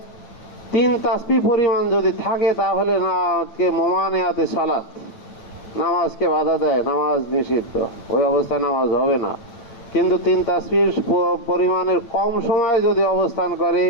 3 তাসবিহ পরিমাণ যদি থাকে তাহলে না কে মোমানিয়াতে সালাত, নামাজকে বাধা দেয়, নামাজ নিষিদ্ধ, ওই অবস্থায় নামাজ হবে না। কিন্তু 3 তাসবিহ পরিমাণের কম সময়ে যদি অবস্থান করে,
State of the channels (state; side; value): late; right; 9.0 ms